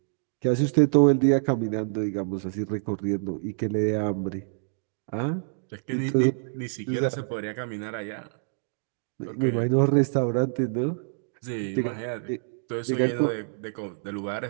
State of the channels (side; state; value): left; silent; digital silence